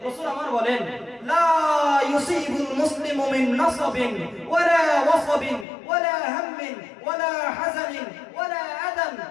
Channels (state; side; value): drops out; right; at 5.7 s